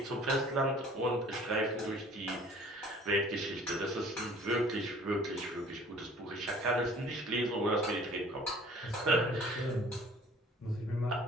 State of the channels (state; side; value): normal; both; correlation 0.51